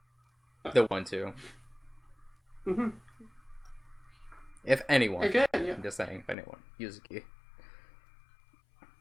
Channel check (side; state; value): right; drops out; at 6.4 s